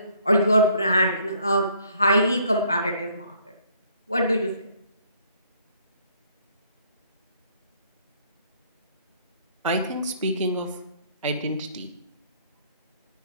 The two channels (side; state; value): both; inverted; correlation -0.63